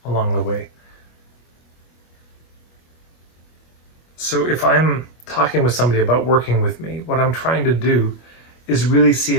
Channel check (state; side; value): late; right; 25 ms